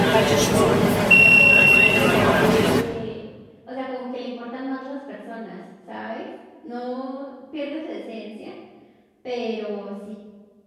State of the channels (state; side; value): identical; both; correlation 1.00